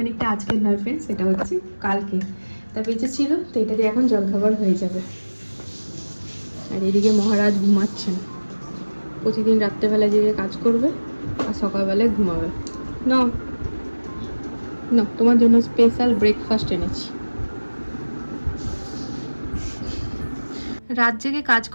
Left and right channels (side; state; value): both; inverted; correlation -1.00